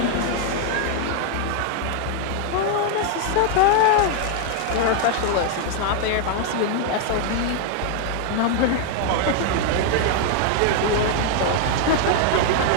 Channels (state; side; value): different; both; correlation 0.00